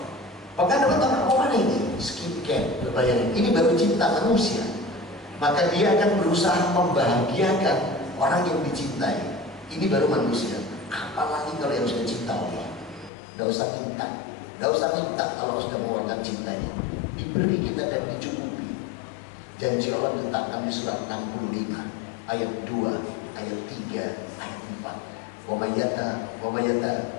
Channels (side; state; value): right; drops out; at 13.1 s